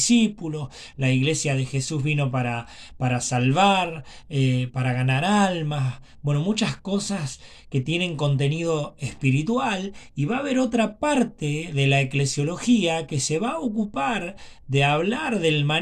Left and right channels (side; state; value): both; identical; correlation 1.00